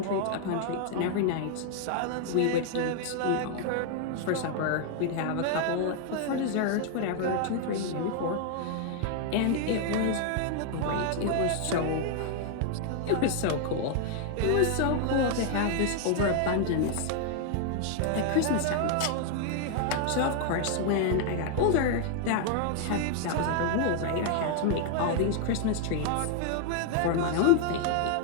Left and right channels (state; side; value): different; both; correlation 0.00